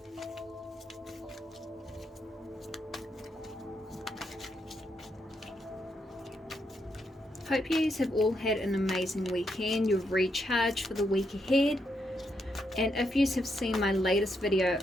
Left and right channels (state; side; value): normal; both; correlation 0.80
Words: Hope you have all had an amazing weekend. You've recharged for the week ahead. And if you have seen my latest video